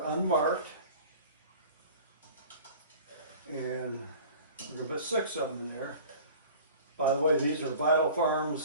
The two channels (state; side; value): inverted; both; correlation -0.43